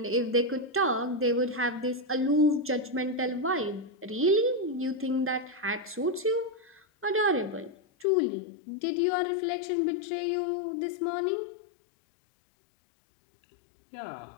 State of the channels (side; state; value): right; drops out; at 8.1 s